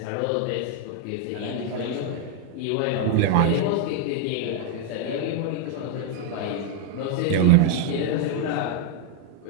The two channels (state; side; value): different; both; correlation 0.00